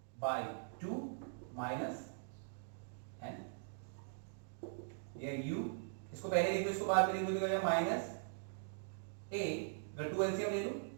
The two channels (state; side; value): silent; left; digital silence